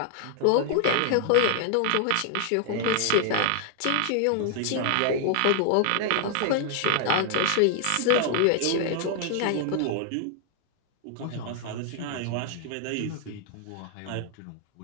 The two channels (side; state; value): both; different; correlation 0.00